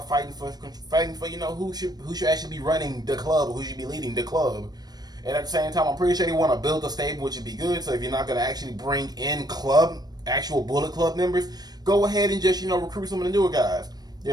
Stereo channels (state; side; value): late; left; 0.19 ms